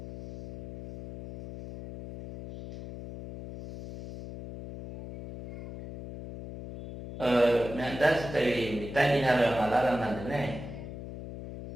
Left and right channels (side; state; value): left; noise; hum, 11 dB below the sound